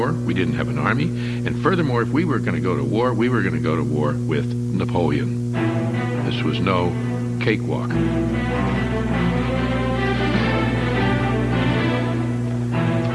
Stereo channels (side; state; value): both; identical; correlation 1.00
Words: we didn't have an army, and furthermore, if we were going to go to war, we were going to go to war with Napoleon. This was no cakewalk.